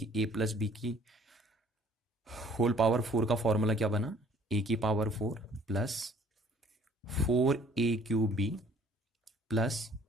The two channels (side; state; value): both; normal; correlation 0.56